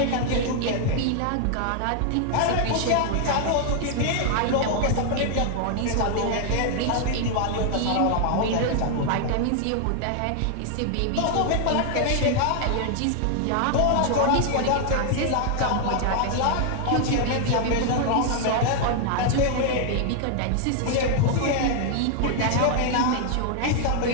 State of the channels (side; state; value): both; different; correlation 0.00